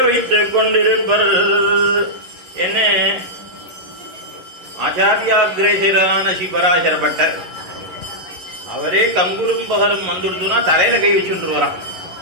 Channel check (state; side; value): late; left; 11 ms